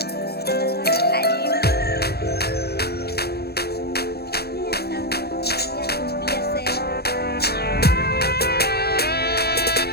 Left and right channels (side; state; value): right; late; 0.47 ms